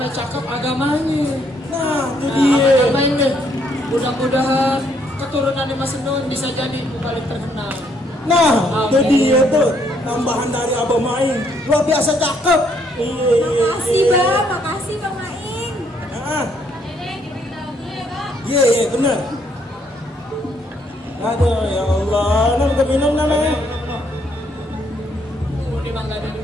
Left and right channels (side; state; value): both; normal; correlation 0.70